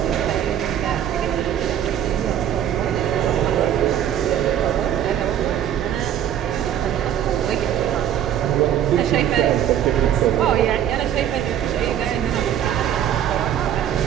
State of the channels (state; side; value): quieter; left; 10.3 dB